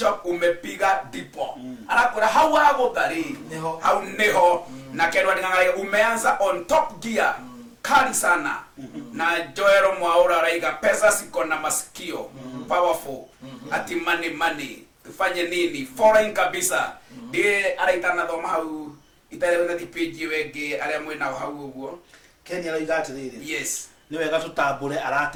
umepiga dipo anakora hau agudhari hau neho na Ken Watingang'araiga umeanza on top gear kali sana na Joero Mwaura Raiga pesa siko na masikio powerful ati money tufanye nini foreign kabisa ndiye araitana thoma hau itarewe na page wenge aria mwina hau uguo Kenya Raiga atiriri yes ni wega tutambure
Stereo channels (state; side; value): identical; both; correlation 1.00